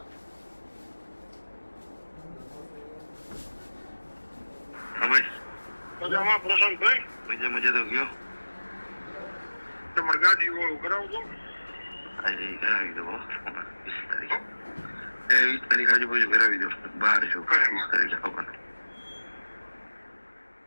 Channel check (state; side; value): inverted; both; correlation -1.00